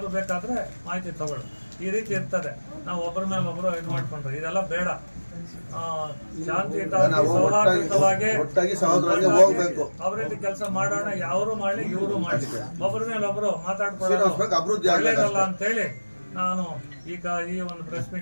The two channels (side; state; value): both; inverted; correlation -1.00